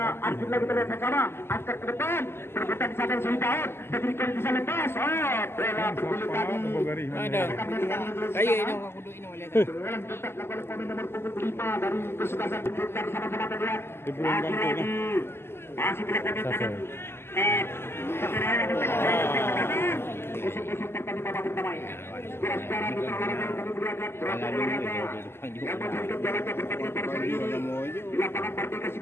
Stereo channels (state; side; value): late; right; 0.12 ms